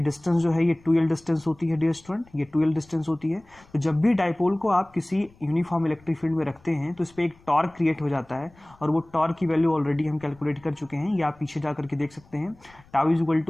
डिस्टेंस जो है ये 2L डिस्टेंस होती है डियर स्टूडेंट, ये 2L डिस्टेंस होती है। तो जब भी डाइपोल को आप किसी यूनिफॉर्म इलेक्ट्रिक फील्ड में रखते हैं तो इस पर एक टॉर्क क्रिएट हो जाता है, और वो टॉर्क की वैल्यू ऑलरेडी हम कैलकुलेट कर चुके हैं, ये आप पीछे जा करके देख सकते हैं। Tau is equal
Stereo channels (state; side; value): noise; left; rumble, 28 dB below the sound